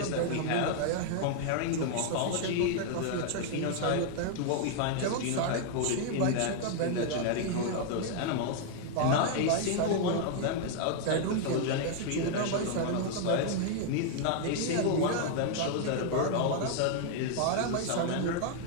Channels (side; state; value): both; different; correlation 0.00